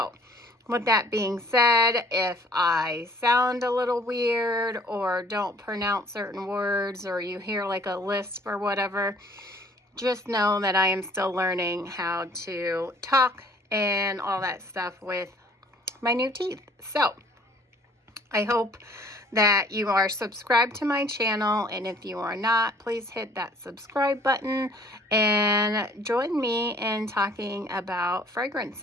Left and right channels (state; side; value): normal; both; correlation 0.56